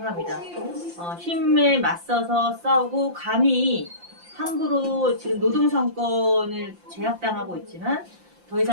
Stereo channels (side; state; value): left; late; 5.8 ms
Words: 힘에 맞서서 싸우고 감히 함부로 지금 노동상권을 제약당하고 있지만 더